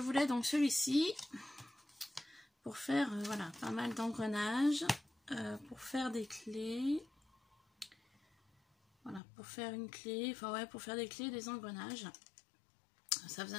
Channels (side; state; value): right; drops out; at 9.2 s